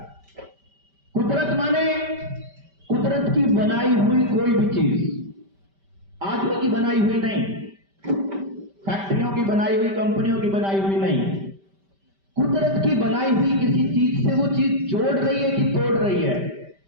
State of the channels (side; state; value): left; late; 5.1 ms